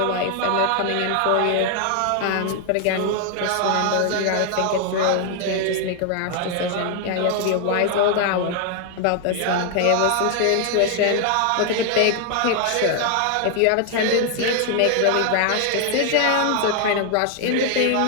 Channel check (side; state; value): both; different; correlation 0.00